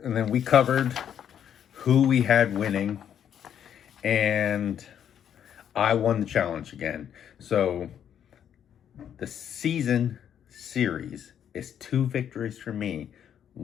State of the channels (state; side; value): quieter; right; 9.2 dB